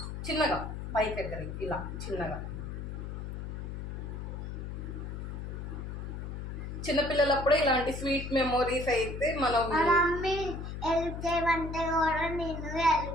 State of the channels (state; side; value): noise; left; hum, 6 dB below the sound